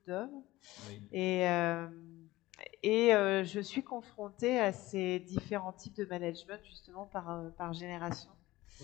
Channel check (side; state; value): right; quieter; 18.1 dB